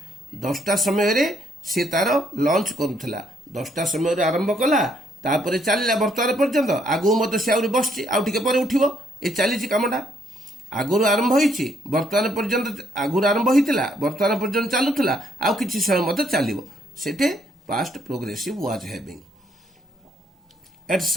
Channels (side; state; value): both; normal; correlation 0.70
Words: 10टा समय रे से तार लंच करूथला 10टा समय रे आरंभ कला तापरे चलला वर्तमान पर्यंत आगु मत से आउरी बसची आउ टिके परे उठिबो ए चलीची कामडा आगुरु आरंभ होईची वर्तमान पर्यंत आगुरु आरंभ होइतिला वर्तमान पर्यंत चालुथला आउ किछि समय मत चालिबो सेटे past progressive was having at